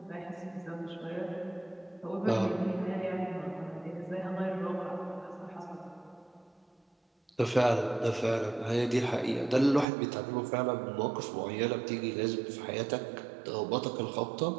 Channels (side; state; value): left; drops out; at 9.9 s